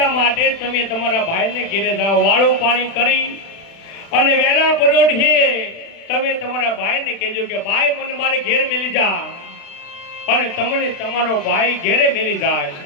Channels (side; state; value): right; late; 36 ms